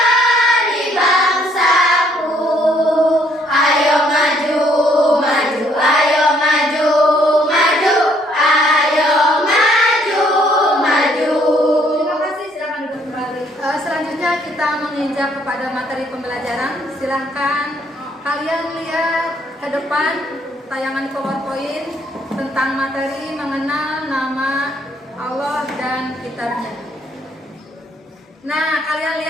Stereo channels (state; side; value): normal; both; correlation 0.66